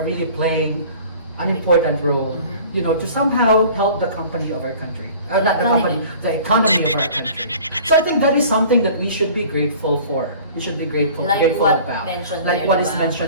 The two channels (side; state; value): both; inverted; correlation -0.46